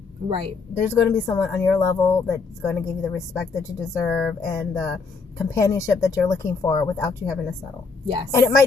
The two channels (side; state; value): right; quieter; 4.5 dB